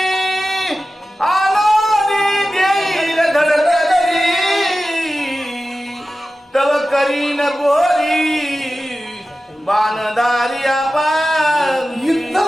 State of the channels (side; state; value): both; normal; correlation 0.94